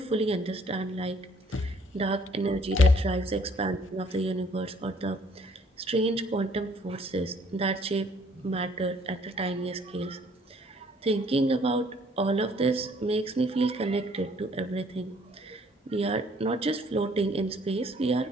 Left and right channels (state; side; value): normal; both; correlation 0.61